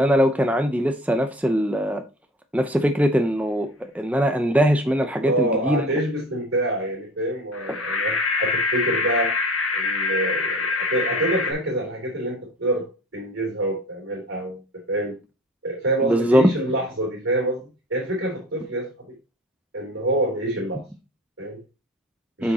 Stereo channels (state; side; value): normal; both; correlation 0.43